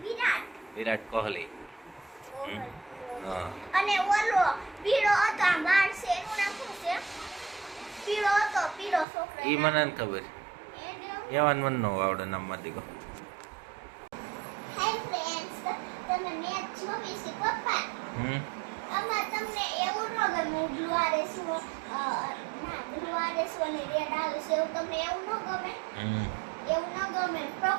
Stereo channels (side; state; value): left; drops out; at 9.1 s